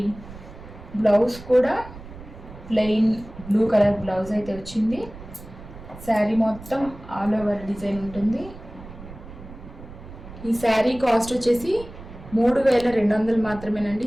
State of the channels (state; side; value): noise; right; rumble, 16 dB below the sound